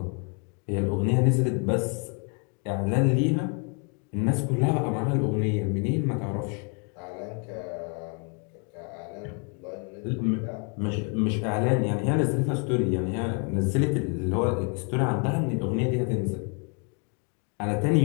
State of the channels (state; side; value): quieter; right; 37.5 dB